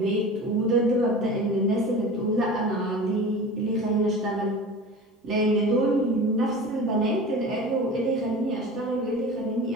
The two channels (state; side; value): normal; both; correlation 0.36